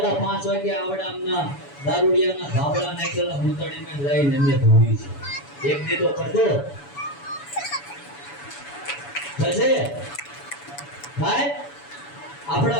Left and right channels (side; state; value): right; late; 7.0 ms